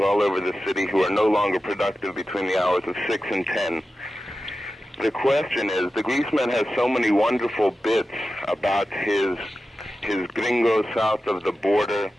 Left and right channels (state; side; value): normal; both; correlation 0.93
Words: all over the city who are no longer productive between the hours of 6 and 10. The question is, the Greaseman has so many wonderful bits about his his gringo south of the border,